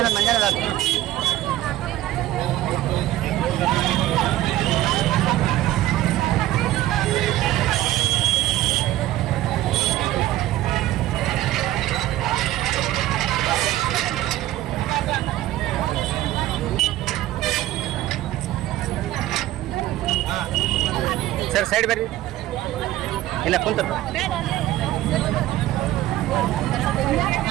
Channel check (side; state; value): left; quieter; 14.9 dB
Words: ಮಂಜಾನ ಸರ್ ಸೈಡ್ ಬರ್ರಿ. ಇಲ್ಲ ಕುಂತ